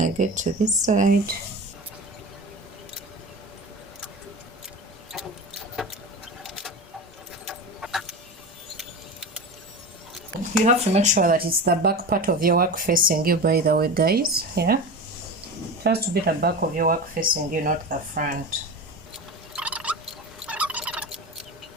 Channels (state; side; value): normal; both; correlation 0.27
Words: get to this side. You have to make sure that it's the back part of your work facing you, by the way, guys, yeah. It has to be the back of your work facing you, not the front.